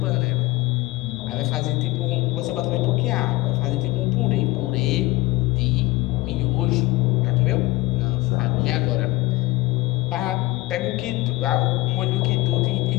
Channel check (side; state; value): right; quieter; 19.9 dB